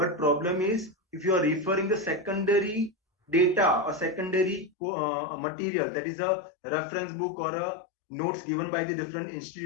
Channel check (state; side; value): drops out; right; at 4.7 s